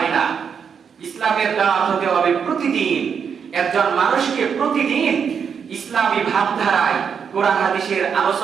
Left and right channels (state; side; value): quieter; left; 6.9 dB